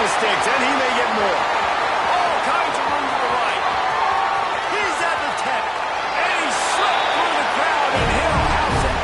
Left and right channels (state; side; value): identical; both; correlation 1.00